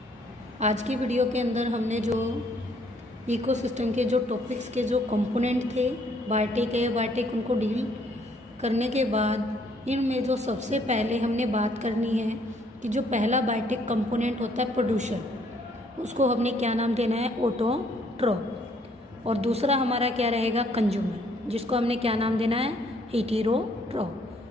आज की video के अंदर हमने जो इकोसिस्टम के जो टॉपिक्स के जो कंपोनेंट थे बायोटिक उनको डील करने के बाद इनमें जो सबसे पहले हमने बात करनी है कि जो पहला बायोटिक कंपोनेंट होता है प्रोड्यूसर, उसको हमने क्या नाम देना है, ऑटोट्रोफ। और दूसरा हमारा क्या रहेगा, कंज्यूमर, जिसको हमने क्या नाम देना है,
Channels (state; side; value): normal; both; correlation 0.65